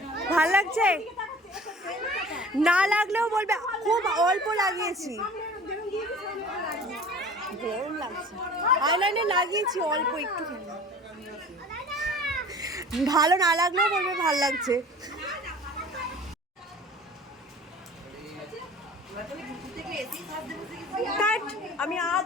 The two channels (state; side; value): normal; both; correlation 0.44